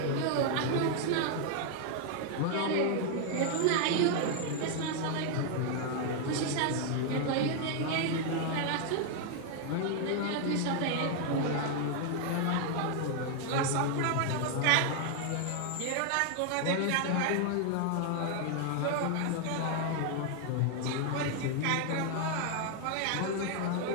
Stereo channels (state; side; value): different; both; correlation 0.00